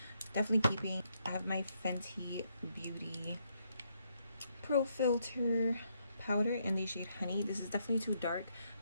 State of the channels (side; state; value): both; inverted; correlation -0.76